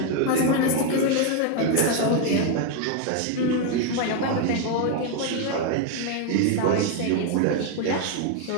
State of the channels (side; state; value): both; different; correlation 0.01